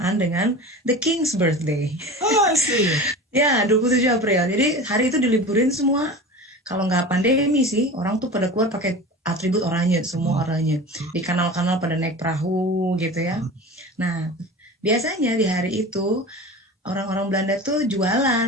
dengan the King's birthday. Oh, I see. Ya, 27 April. Jadi hari itu diliburin semua. Kalau nggak pandemi sih, orang tuh pada keluar pakai atribut oranye, semua oranye. Di kanal-kanal pada naik perahu gitu ya. Nah, biasanya di hari itu orang-orang Belanda tuh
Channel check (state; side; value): normal; both; correlation 0.34